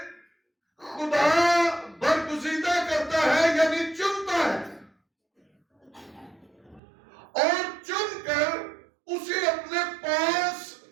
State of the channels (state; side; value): drops out; left; at 6.8 s